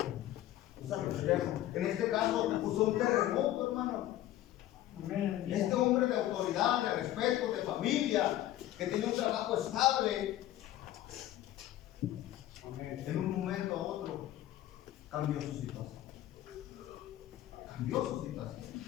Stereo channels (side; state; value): right; quieter; 13.9 dB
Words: usar lo externo. En este caso usó un terremoto, hermano. Este hombre de autoridad, de respeto, de familia, que tiene un trabajo estable, en un momento a otro cambió su situación. Cambió su situación.